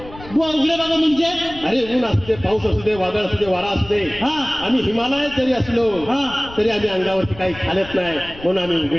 बुवा उघडे बाबा म्हणजे अरे ऊन असू दे पाऊस असू दे वादळ असू दे वारा असू दे आम्ही हिमालयात जरी असलो तरी आम्ही अंगावरती काही खालत नाही म्हणून आम्ही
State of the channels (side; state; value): left; noise; rumble, 17 dB below the sound